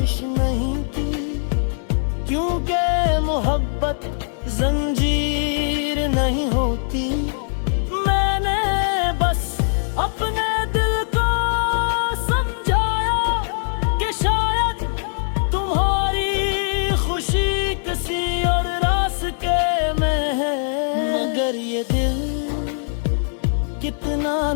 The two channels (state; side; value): silent; right; digital silence